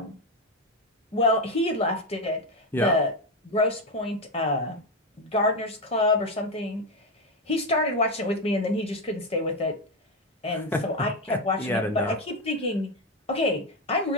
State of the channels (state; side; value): normal; both; correlation 0.10